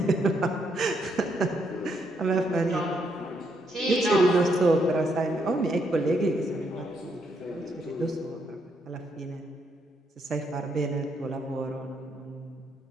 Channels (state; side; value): normal; both; correlation 0.76